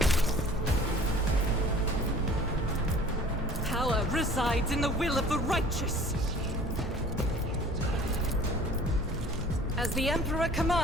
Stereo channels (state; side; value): normal; both; correlation 0.48